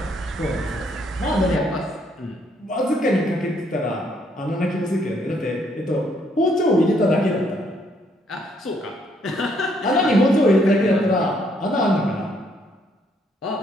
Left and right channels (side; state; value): both; normal; correlation 0.70